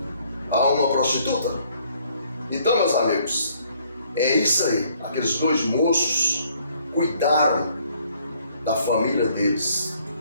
a uma prostituta? Então, meus amigos, é isso aí. Aqueles 2 moços cuidaram da família deles,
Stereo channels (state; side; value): inverted; both; correlation -0.64